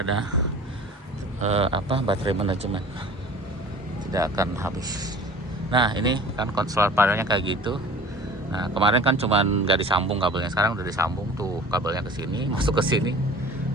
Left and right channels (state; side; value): normal; both; correlation 0.43